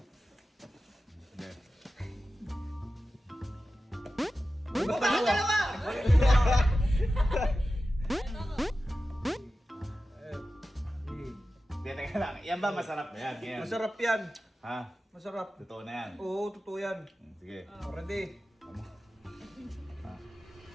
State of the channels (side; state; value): both; normal; correlation 0.94